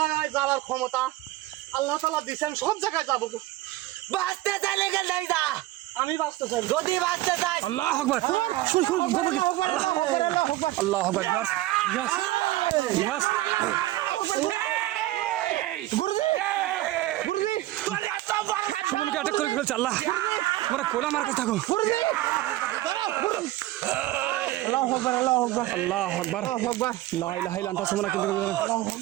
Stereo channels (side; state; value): left; quieter; 16.6 dB